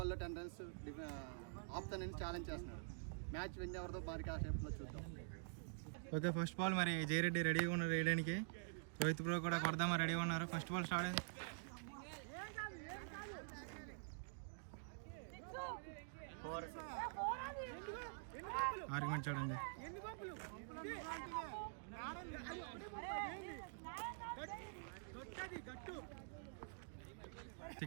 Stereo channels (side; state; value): left; silent; digital silence